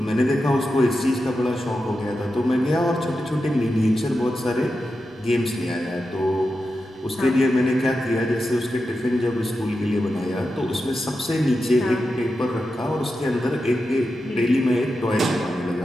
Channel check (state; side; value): normal; both; correlation 0.90